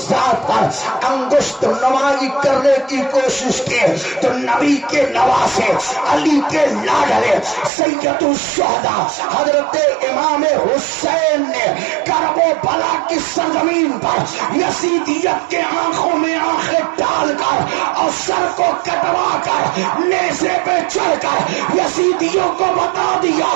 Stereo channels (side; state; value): left; drops out; at 7.7 s